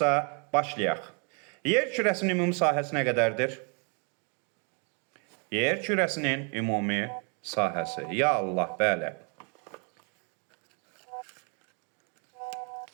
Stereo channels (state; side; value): quieter; left; 36.6 dB